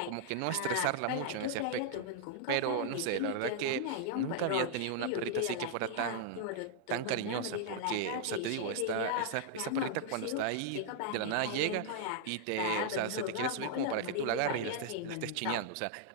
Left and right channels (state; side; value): different; both; correlation -0.01